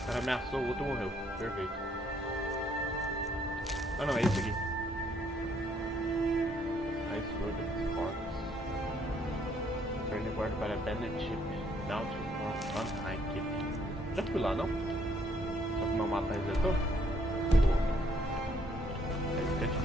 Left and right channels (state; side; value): normal; both; correlation 0.67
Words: cara ameaçou, o outro morreu. Perfeito. Ah não, é esse aqui. Ice Sword of Sparks. Turn the board para Bandit Chip. Down to on high keep. Já fui lá, não? Só que meu mapa resetou? Boa. Aí fica